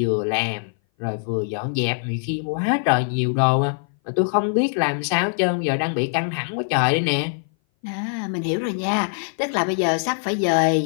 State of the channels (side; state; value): right; silent; 59 dB below the other